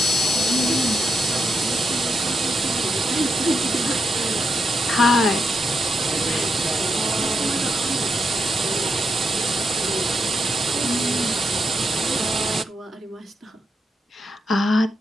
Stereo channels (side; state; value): both; normal; correlation 0.83